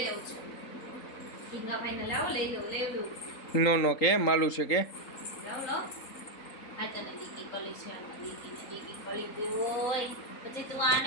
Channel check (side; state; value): right; late; 3.8 ms